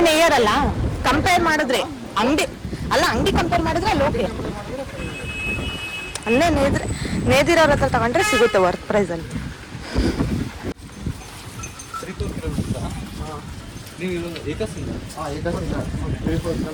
ನೇಯ್ಯರಲ್ಲ. ಕಂಪೇರ್ ಮಾಡಿದ್ರೆ ಅಂಗಡಿ ಕಂಪೇರ್ ಮಾಡಿದ್ರೆ ಅಲ್ಲಿ ಓಕೆ. ಅಲ್ಲೇ ನೇದಿರೋರ ಹತ್ರ ತಗೊಂಡ್ರೆ ಸಿಗುತ್ತೆ ವರ್ತ್ ಪ್ರೈಸ್ ಅಂತ.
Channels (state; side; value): identical; both; correlation 1.00